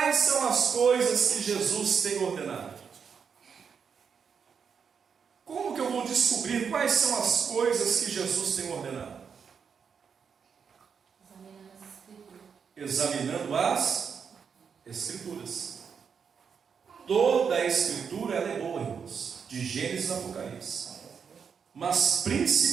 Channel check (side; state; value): left; quieter; 6.5 dB